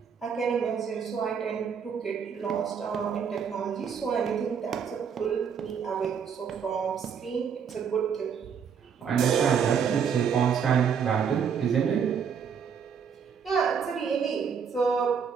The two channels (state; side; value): quieter; left; 7.0 dB